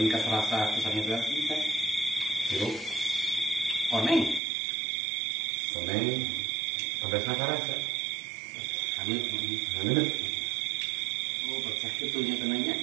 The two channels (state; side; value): drops out; left; at 4.4 s